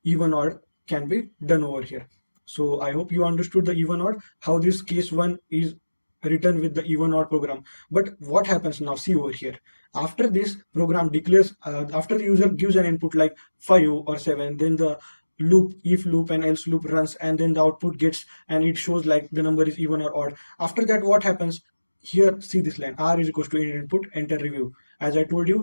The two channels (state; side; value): inverted; both; correlation -1.00